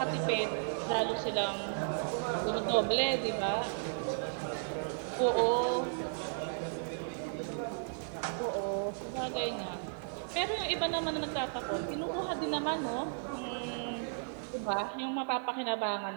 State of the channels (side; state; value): left; silent; 55 dB below the other